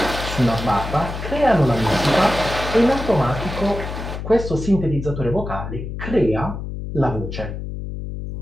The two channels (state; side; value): noise; left; hum, 7 dB below the sound